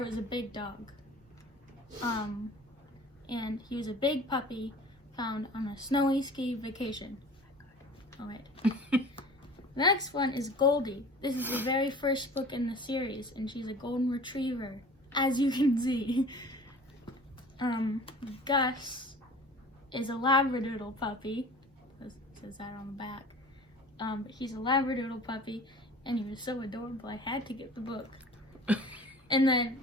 was a big dog. And he was a big puppy found on a snowy ski vacation. All right. The next one is Goldie. This is the very first book in the series, and she's a golden retriever, as you can see. Gus is a Labradoodle puppy. It says that on the back. But he's a Labradoodle puppy, and he was so adorable I had to get the book. And then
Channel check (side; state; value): both; normal; correlation 0.43